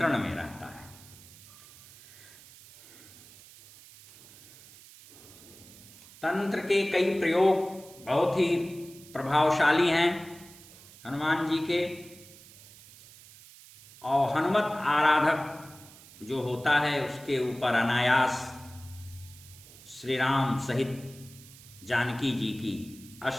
में रहता है। तंत्र के कई प्रयोग बहुत ही प्रभावशाली हैं हनुमान जी के, और हनुमत आराधक जो होता है उसके ऊपर अनायास श्री राम सहित जानकी जी की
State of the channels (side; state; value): right; noise; hiss, 21 dB below the sound